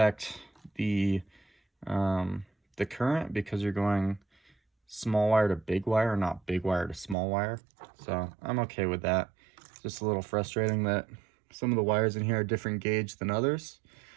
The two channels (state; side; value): drops out; left; at 7.2 s